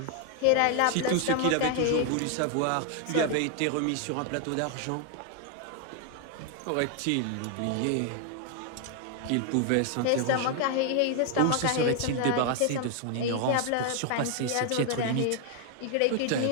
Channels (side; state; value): both; different; correlation 0.00